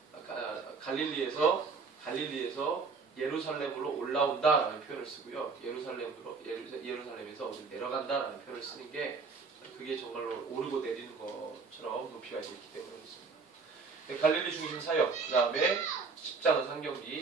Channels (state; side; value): quieter; left; 4.7 dB